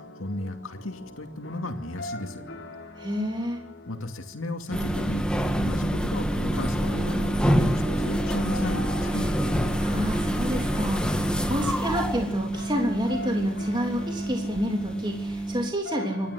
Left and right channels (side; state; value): both; normal; correlation 0.82